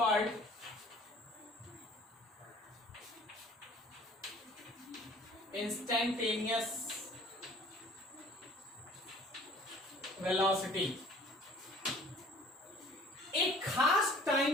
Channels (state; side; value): normal; both; correlation 0.51